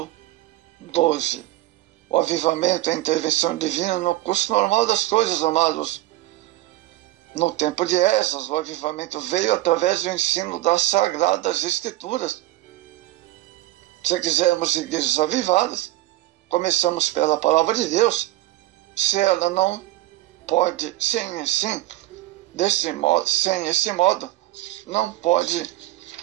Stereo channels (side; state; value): left; quieter; 16.4 dB